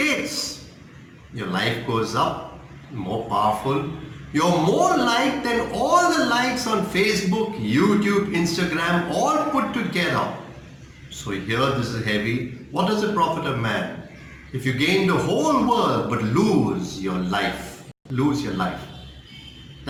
Your life goes up, more powerful. You're more liked than all the likes on Facebook, YouTube, Instagram, all put together. So here this is heavy. What does it profit a man if you gain the whole world but lose your life? Lose your life.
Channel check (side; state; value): both; identical; correlation 1.00